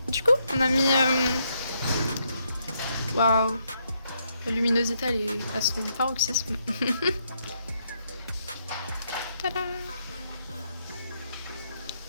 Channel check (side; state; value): both; inverted; correlation -0.77